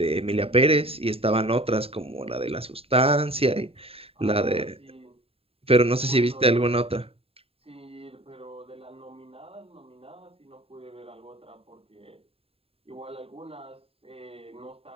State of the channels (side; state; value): left; late; 0.28 ms